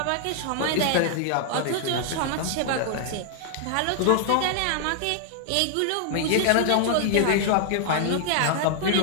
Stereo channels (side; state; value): both; different; correlation 0.00